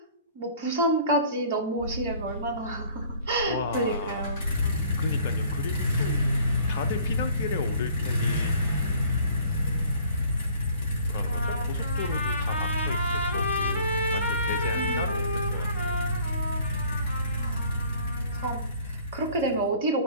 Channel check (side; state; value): both; inverted; correlation -0.53